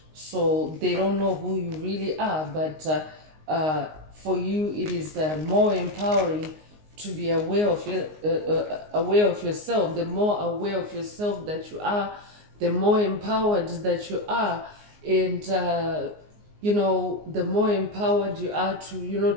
So they don't know who you really are. But for you, it is more empowering to be aware of yourself. The more aware of yourself that you are, the more empowered that you are, and the more empowered you are to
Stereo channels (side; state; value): left; late; 19 ms